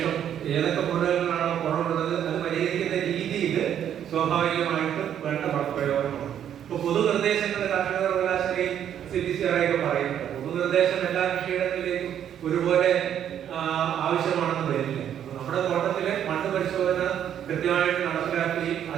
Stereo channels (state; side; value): quieter; left; 9.7 dB